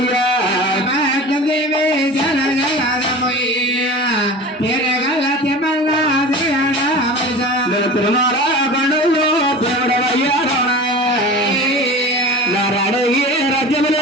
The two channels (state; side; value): normal; both; correlation 0.35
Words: దేవే జన జగమయ్య పేరు గల తెమ్మల్ల తిరుమల కొండలో దేవుడవయ్యారో నారాయణ